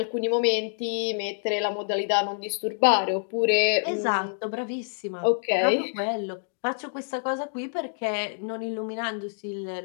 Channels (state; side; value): silent; right; digital silence